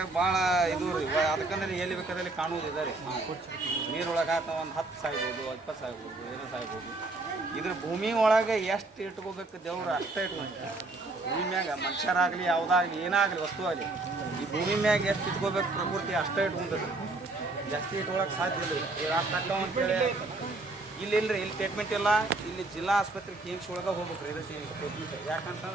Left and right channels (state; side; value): quieter; left; 3.1 dB